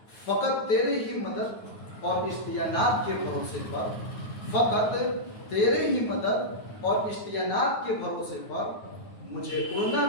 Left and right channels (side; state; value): right; late; 9.4 ms